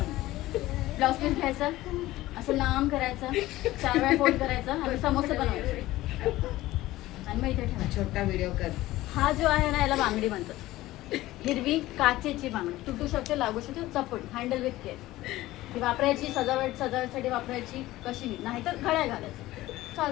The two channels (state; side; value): quieter; right; 16.8 dB